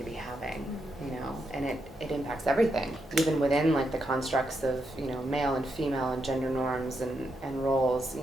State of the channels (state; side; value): normal; both; correlation 0.82